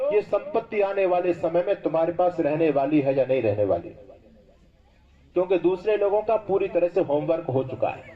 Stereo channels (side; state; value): both; identical; correlation 1.00